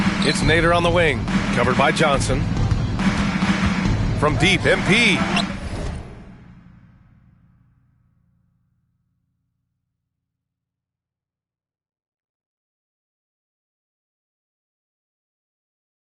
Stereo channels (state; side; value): identical; both; correlation 1.00